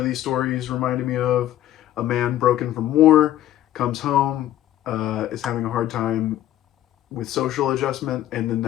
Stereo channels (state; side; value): quieter; right; 13.0 dB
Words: these stories reminded me of. A man broken from war, comes home, is having a hard time with social adjustment, and then